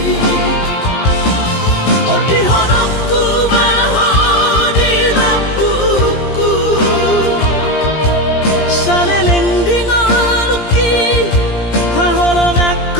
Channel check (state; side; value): late; right; 17 ms